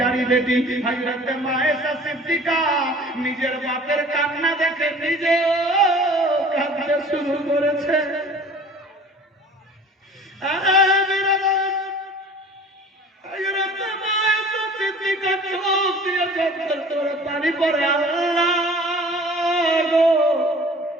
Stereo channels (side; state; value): both; normal; correlation 0.46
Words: বেটি হযরত মা আয়েশা সিদ্দিকা নিজের বাপের কান্না দেখে নিজেও কাঁদতে শুরু করেছে। হযরত মা আয়েশা সিদ্দিকা চোখ দিয়ে ঝরঝর করে পানি পড়ে। আল্লাহ গো,